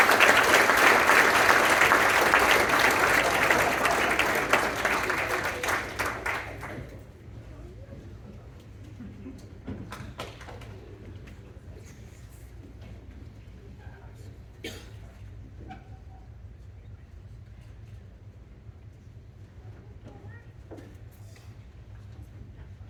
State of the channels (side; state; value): both; identical; correlation 1.00